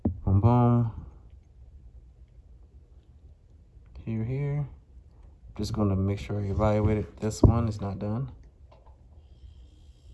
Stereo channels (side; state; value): both; identical; correlation 1.00